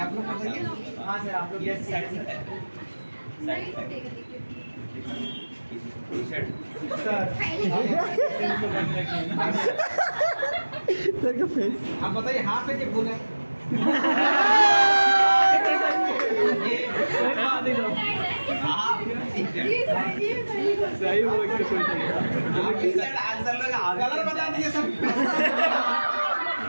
आप लोग बताइए। हाँ सर आप लोग ये साइड से टी-शर्ट सर का फेस। आप बताइए हाफ है कि फुल है। सही बोल के कोई नहीं। आंसर लोग कलर बता दीजिए सब।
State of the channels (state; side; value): inverted; both; correlation -1.00